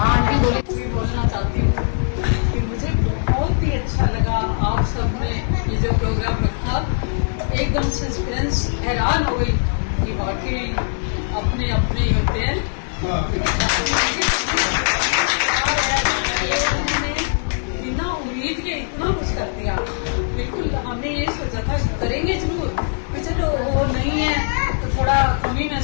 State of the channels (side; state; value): right; silent; digital silence